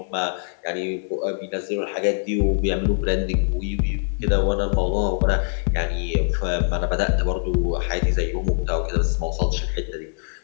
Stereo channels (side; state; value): right; silent; digital silence